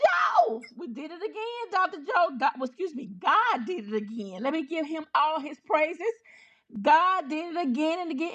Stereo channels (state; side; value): identical; both; correlation 1.00